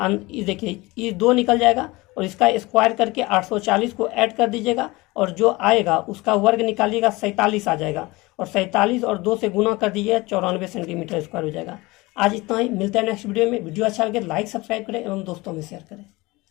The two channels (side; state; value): right; quieter; 22.1 dB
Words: देखिए ये 2 निकल जाएगा और इसका स्क्वायर करके 840 को ऐड कर दीजिएगा और जो आएगा उसका वर्ग निकालिएगा 47 आ जाएगा, और 47 और 2 से गुना कर दीजिए 94 सेंटीमीटर स्क्वायर हो जाएगा। आज इतना ही, मिलते हैं नेक्स्ट वीडियो में। वीडियो अच्छा लगे लाइक सब्सक्राइब करें एवं दोस्तों में शेयर करें।